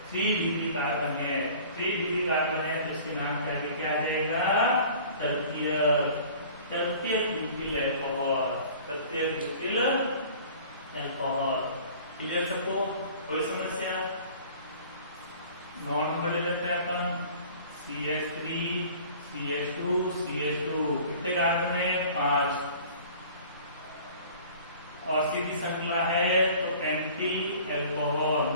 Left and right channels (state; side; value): inverted; both; correlation -0.47